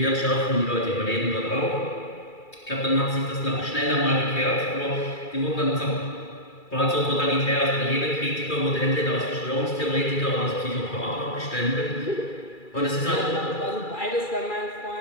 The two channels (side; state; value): right; late; 2.3 ms